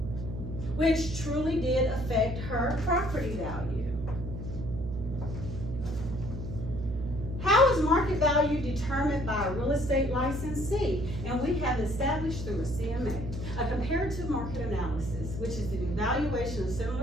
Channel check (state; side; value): noise; right; hum, 6 dB below the sound